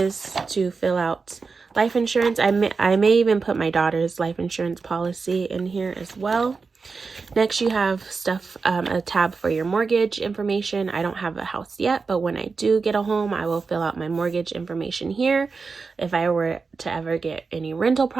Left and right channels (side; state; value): left; quieter; 4.7 dB